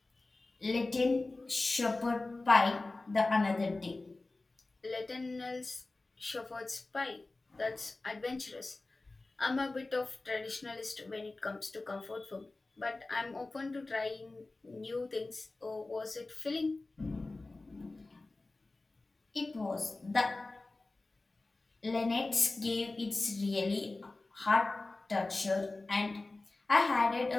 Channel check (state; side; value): quieter; right; 3.2 dB